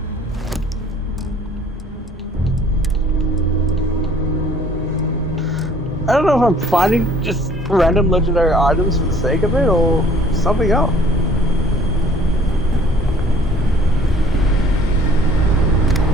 I don't know if I'm finding just random legendary items for the sake of it or something else.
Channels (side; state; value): both; normal; correlation 0.55